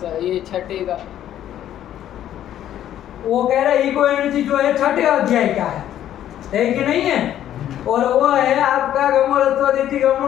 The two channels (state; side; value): quieter; right; 11.4 dB